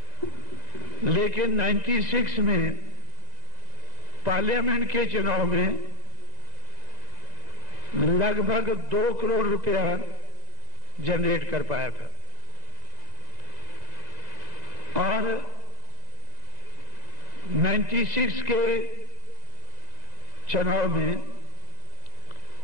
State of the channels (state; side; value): late; left; 2.0 ms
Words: लेकिन 96 में पार्लियामेंट के चुनाव में लगभग 2 करोड़ रुपया जनरेट कर पाया था। और 96 के चुनाव में,